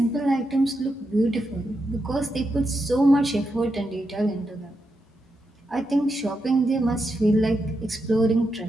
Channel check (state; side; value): normal; both; correlation 0.85